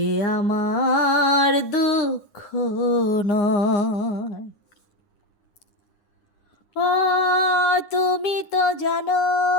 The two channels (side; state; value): right; late; 9.8 ms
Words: আমার দুঃখ নয়। ও তুমি তো জানো